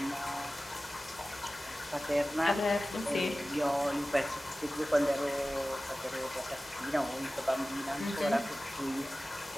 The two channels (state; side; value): normal; both; correlation 0.96